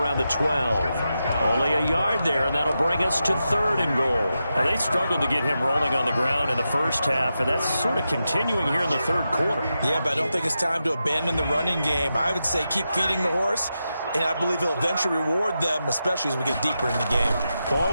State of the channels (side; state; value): both; inverted; correlation -0.88